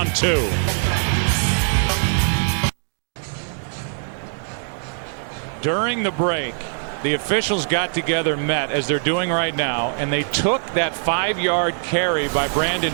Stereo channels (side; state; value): left; silent; digital silence